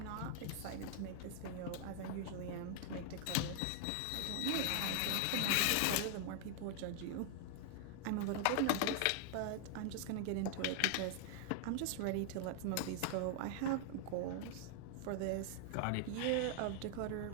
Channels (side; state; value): both; different; correlation 0.00